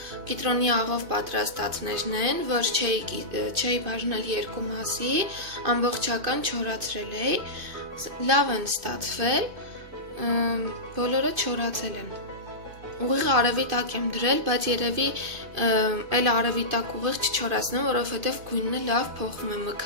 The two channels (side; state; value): left; late; 2.5 ms